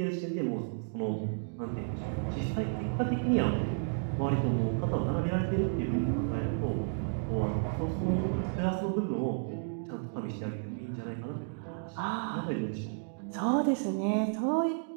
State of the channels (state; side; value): silent; left; digital silence